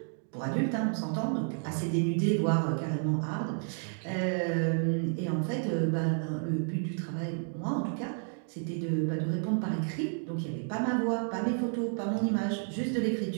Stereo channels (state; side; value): silent; left; 57 dB below the other